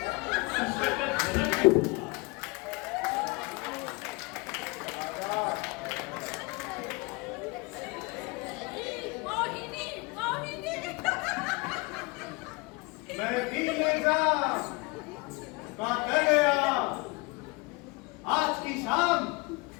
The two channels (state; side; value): quieter; right; 26.8 dB